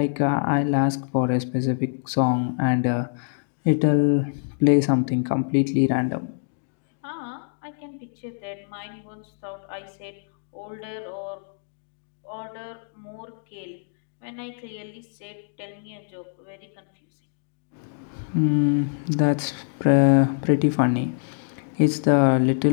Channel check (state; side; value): silent; right; digital silence